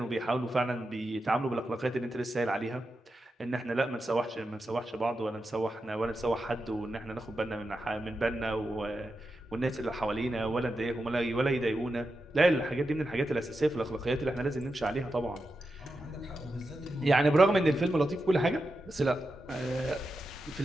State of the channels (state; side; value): normal; both; correlation 0.89